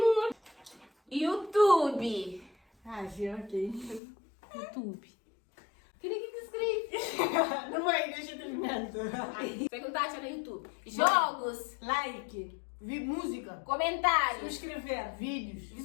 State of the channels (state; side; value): drops out; right; at 4.0 s